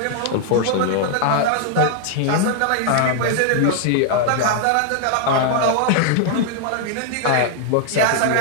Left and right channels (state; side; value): different; both; correlation 0.00